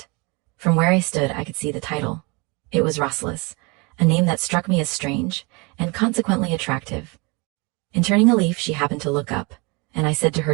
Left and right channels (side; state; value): left; quieter; 28.7 dB